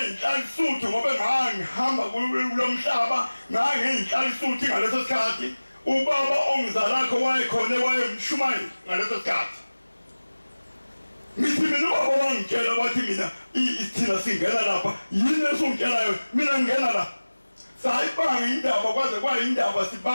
ngoba ngihamba kulomhlaba ngangiyinhlalisuthi ngaleso sikhathi ubaba ongizalakho wayekhona wayemshumayeli ngaleso sikhathi ngithi mina ubaba wangitshela wathi mina thina singena lapha yini esungitshelayo mina ngingena la sayibanga indaba kwaze kwayindaba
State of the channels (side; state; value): both; inverted; correlation -1.00